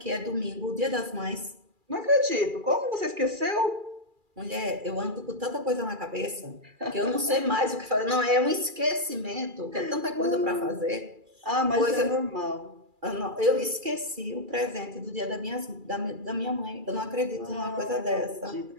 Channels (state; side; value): late; left; 2.4 ms